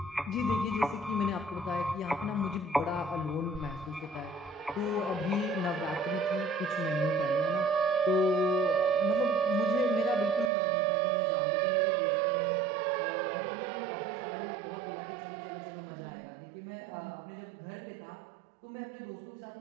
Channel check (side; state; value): left; drops out; at 10.5 s